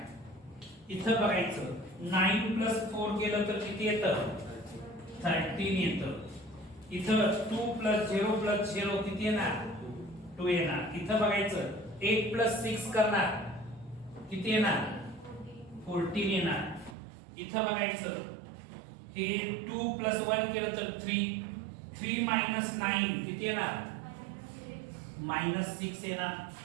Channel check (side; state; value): left; drops out; at 16.9 s